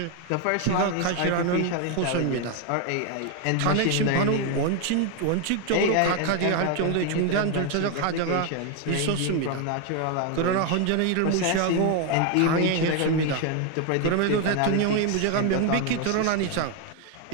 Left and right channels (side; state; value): both; different; correlation 0.01